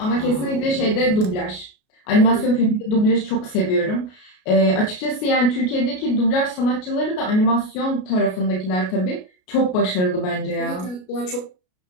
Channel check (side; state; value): right; late; 33 ms